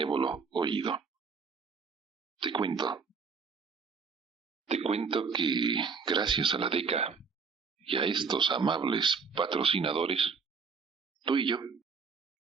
oído. Te cuento que gracias a la DECA y a estos amables patrocinadores, tú y yo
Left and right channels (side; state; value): left; quieter; 5.3 dB